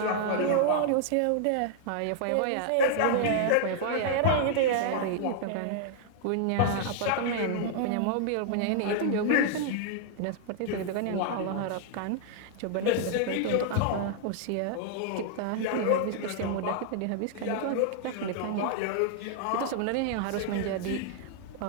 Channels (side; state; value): both; different; correlation -0.01